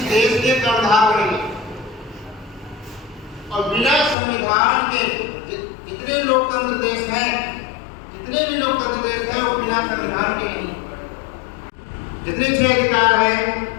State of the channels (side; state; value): right; drops out; at 4.2 s